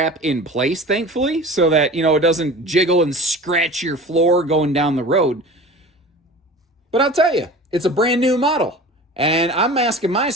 in place, thankfully, so that, it doesn't jiggle and scratch your floor going down the road. But I'll tell you, it's a brand new model. And I'm asking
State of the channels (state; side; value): normal; both; correlation 0.38